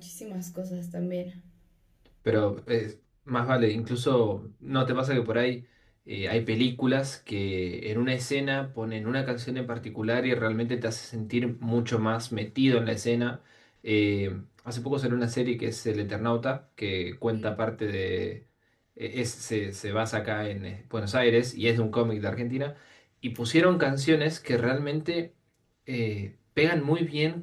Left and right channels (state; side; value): identical; both; correlation 1.00